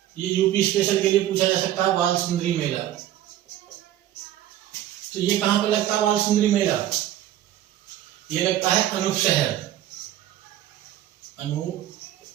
ये यूपी स्पेशल के लिए पूछा जा सकता है, बाल सुंदरी मेला। तो ये कहां पर लगता है, बाल सुंदरी मेला, ये लगता है अनूप शहर, अनूप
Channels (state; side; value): quieter; left; 12.6 dB